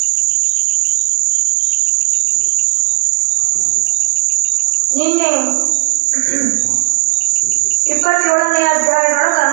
ನಿನ್ನೆ 27ನೇ ಅಧ್ಯಾಯದೊಳಗ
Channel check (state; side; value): quieter; left; 31.5 dB